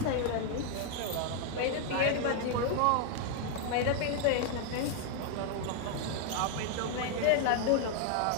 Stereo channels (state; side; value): different; both; correlation 0.00